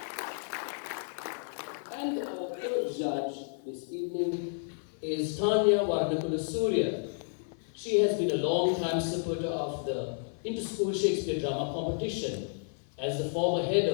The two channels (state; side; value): silent; right; 57 dB below the other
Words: And our third judge this evening is Tanya Warnakulasuriya. She has been a long-time supporter of the Inter-School Shakespeare Drama Competition. As the former head